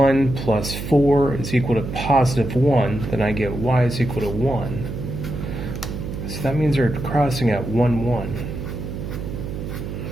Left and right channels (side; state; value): right; noise; hum, 6 dB below the sound